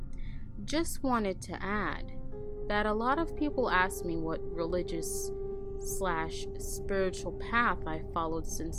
Just wanted to add that a lot of people ask me what religious/spiritual path I followed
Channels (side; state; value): both; identical; correlation 1.00